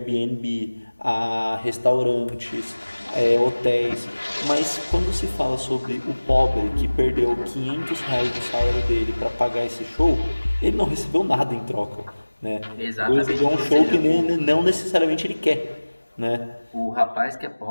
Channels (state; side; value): inverted; both; correlation -1.00